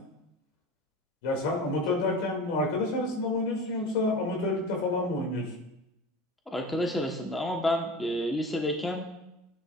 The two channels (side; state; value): both; normal; correlation 0.33